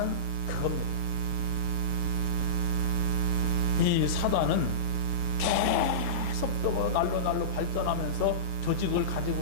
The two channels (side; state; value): left; late; 6.8 ms